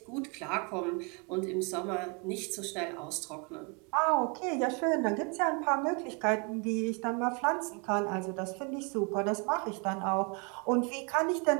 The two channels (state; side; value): quieter; left; 34.1 dB